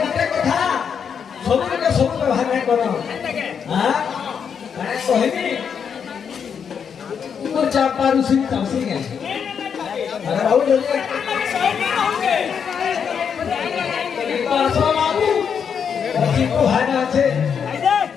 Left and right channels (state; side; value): quieter; right; 7.1 dB